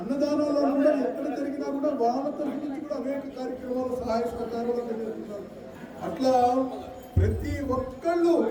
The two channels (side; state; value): both; identical; correlation 1.00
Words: కూడా ఎక్కడ జరిగినా కూడా వాళ్ళ తరఫు నుంచి కూడా అనేక కార్యక్రమాలు సహాయ సహకారాలు చేస్తున్నారు. అట్లా ప్రతి ఒక్కళ్ళు